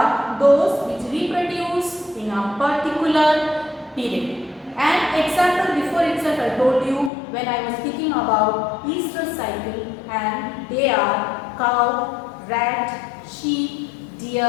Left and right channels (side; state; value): right; drops out; at 7.1 s